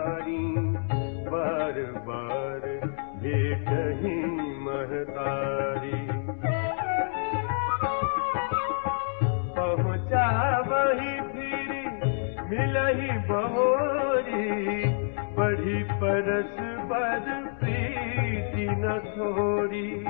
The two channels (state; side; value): silent; right; digital silence